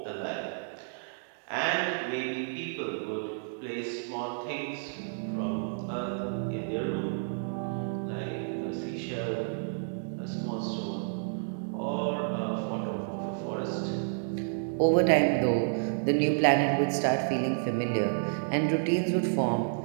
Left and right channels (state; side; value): silent; left; digital silence